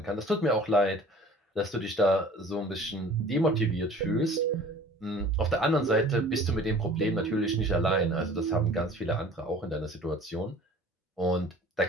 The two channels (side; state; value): both; normal; correlation 0.47